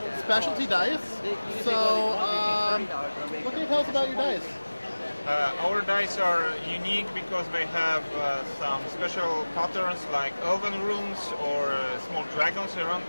specialty dice. So, what can you tell us about your dice? Our dice are unique because they have some special patterns like elven runes or small dragons around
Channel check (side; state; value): both; inverted; correlation -1.00